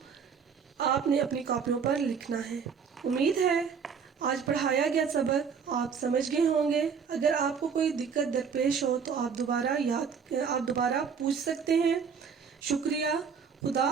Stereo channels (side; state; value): left; quieter; 6.4 dB